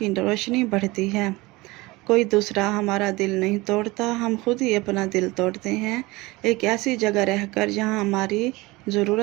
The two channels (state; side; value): quieter; left; 21.8 dB